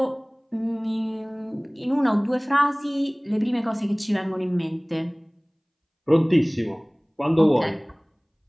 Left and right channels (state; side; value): identical; both; correlation 1.00